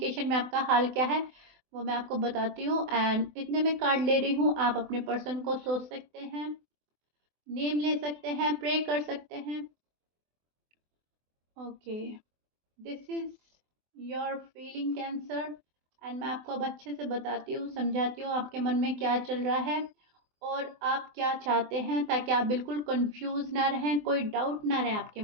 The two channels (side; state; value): left; late; 24 ms